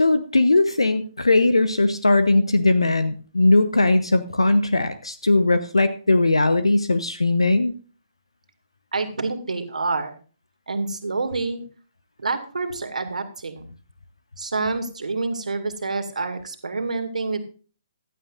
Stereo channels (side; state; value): both; inverted; correlation -0.91